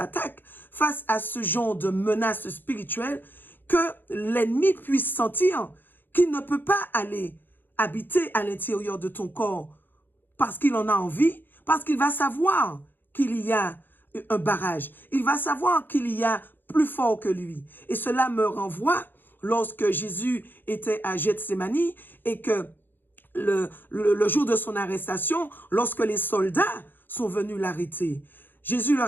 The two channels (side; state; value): right; late; 0.093 ms